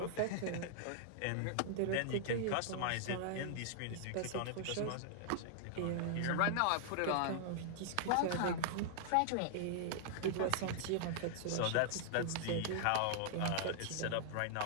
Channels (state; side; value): different; both; correlation -0.01